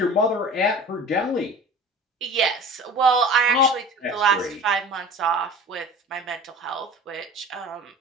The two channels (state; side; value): normal; both; correlation 0.40